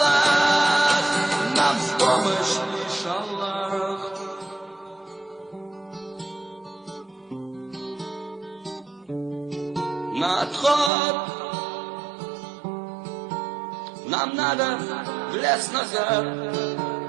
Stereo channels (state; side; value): drops out; left; at 10.9 s